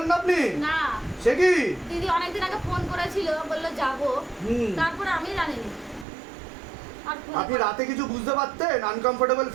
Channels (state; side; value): drops out; left; at 6.1 s